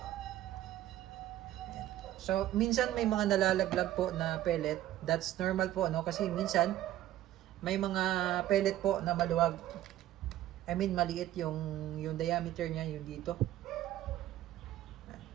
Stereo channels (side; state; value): left; quieter; 13.5 dB